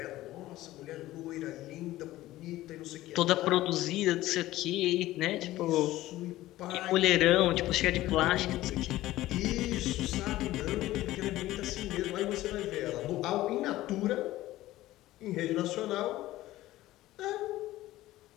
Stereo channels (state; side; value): quieter; right; 16.0 dB